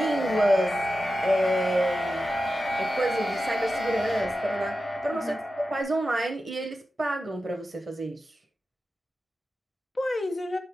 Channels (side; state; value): both; normal; correlation 0.92